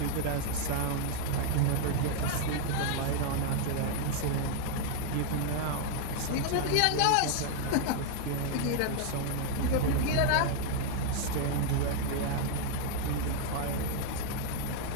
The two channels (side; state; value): both; different; correlation 0.00